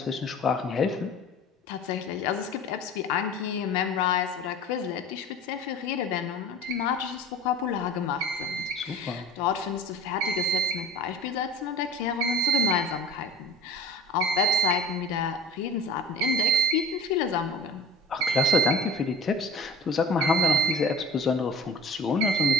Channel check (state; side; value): normal; both; correlation 0.40